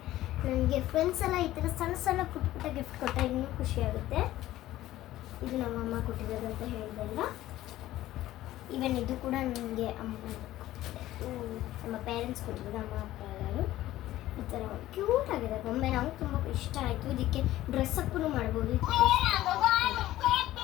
ನನಗೆ ಫ್ರೆಂಡ್ಸ್ ಎಲ್ಲ ಈ ಥರ ಸಣ್ಣ ಪುಟ್ಟ ಗಿಫ್ಟ್ ಕೊಟ್ಟರೆ ಇನ್ನೂ ಖುಷಿಯಾಗುತ್ತೆ. ಇದು ನಮ್ಮಮ್ಮ ಕೊಟ್ಟಿರೋದು ಅಂತ ಹೇಳಿದೆಲ್ಲ. ಈವನ್ ಇದು ಕೂಡ ನನಗೆ ನಮ್ಮ ಪೇರೆಂಟ್ಸ್ ಕೊಟ್ಟಿರೋದು, ಅಮ್ಮ ಅಪ್ಪ ಎಲ್ಲರೂ. ಈ ಥರ ಕ್ಯೂಟ್ ಆಗಿದೆ ಗೊಂಬೆ, ನಮಗೆ ತುಂಬ ಇಷ್ಟ ಆಯಿತು. ಇದಕ್ಕೆ ಡ್ರೆಸ್ ಅಪ್ಪೂ ಮಾಡ್ಬೋದು.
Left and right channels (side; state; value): right; quieter; 15.0 dB